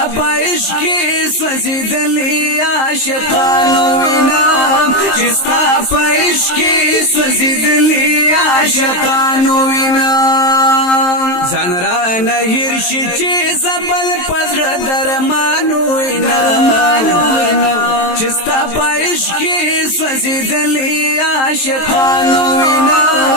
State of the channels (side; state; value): right; late; 23 ms